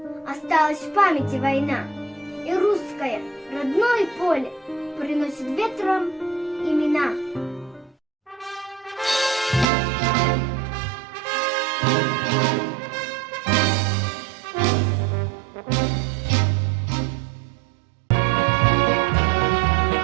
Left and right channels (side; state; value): left; drops out; at 9.7 s